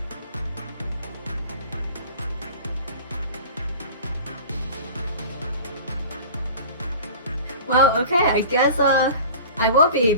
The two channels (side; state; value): both; inverted; correlation -0.40